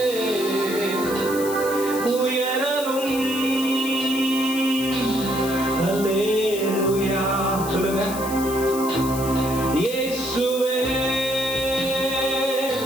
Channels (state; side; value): noise; left; hiss, 10 dB below the sound